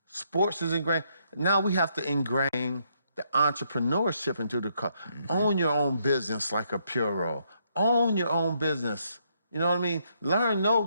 Sports is ingrained. Now we have to ingrain the entrepreneurship into the culture. Mm-hmm. Own your own business like a Puro. Own your own business. You know what I mean? Learn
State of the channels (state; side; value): inverted; both; correlation -0.74